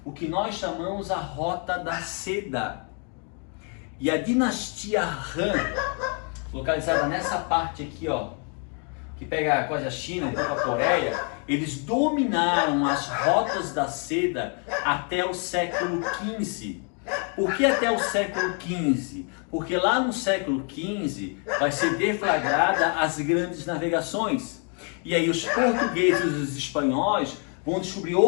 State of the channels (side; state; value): right; quieter; 40.0 dB